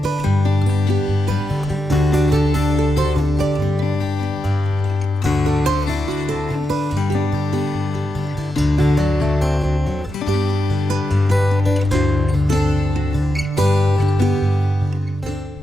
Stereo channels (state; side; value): normal; both; correlation 0.86